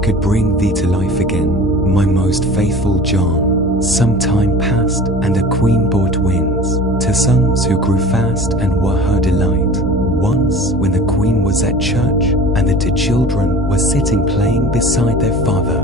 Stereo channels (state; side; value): normal; both; correlation 0.40